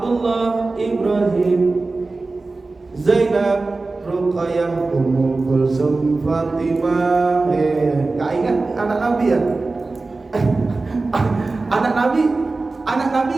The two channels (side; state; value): left; quieter; 3.5 dB